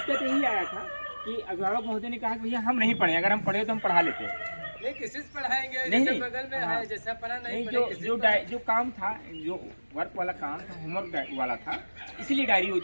यही आया था कि अभिभावक महोदय ने कहा कि भैया हम नहीं पढ़े, अगर हम पढ़े तो हम पढ़ा लेते हैं। नहीं किसी से पढ़ाएंगे, नहीं, जैसे नहीं। बगल में हाँ। है जैसा पढ़ा नहीं जो पढ़े जो जो काम था, जो वर्क वाला काम था, होमवर्क वाला था, इसीलिए डायरी वो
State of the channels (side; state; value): both; inverted; correlation -1.00